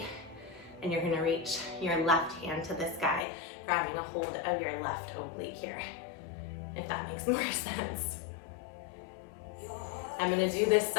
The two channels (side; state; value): right; drops out; at 3.2 s